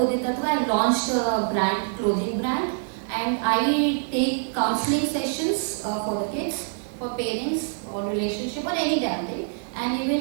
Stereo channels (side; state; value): left; silent; 62 dB below the other